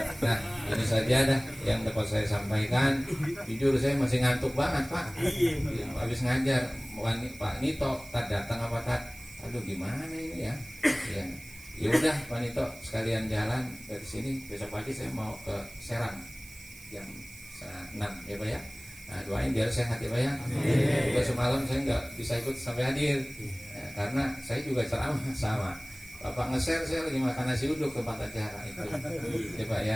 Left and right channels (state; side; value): noise; right; hiss, 18 dB below the sound